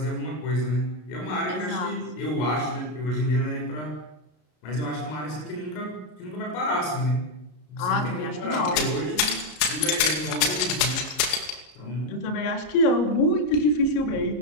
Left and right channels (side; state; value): right; late; 33 ms